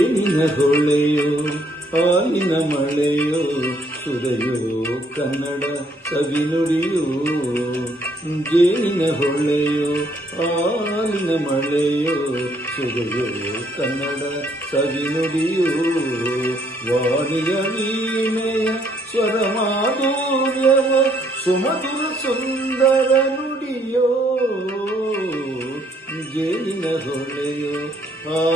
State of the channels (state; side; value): normal; both; correlation 0.68